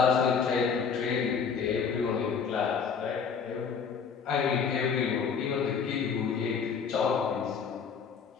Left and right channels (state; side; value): quieter; right; 6.3 dB